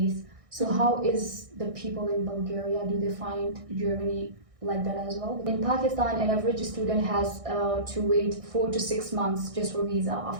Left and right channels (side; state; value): left; late; 1.6 ms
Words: So how is the people in Bulgaria? Do they find Germany like that as well? In Pakistan, an average student has to wait 4 to 6 months just for visa